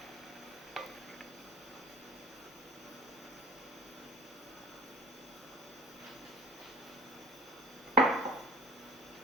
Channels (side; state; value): both; normal; correlation 0.43